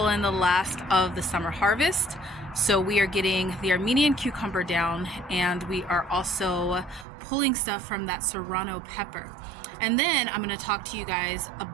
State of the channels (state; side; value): drops out; left; at 7.1 s